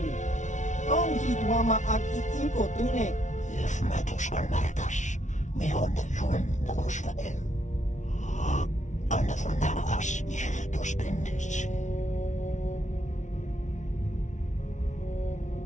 Tong hit wama agi inko tune. If matos alertas, me on yun nagusvael. Another namagas ihtos bendis.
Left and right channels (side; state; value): right; late; 0.36 ms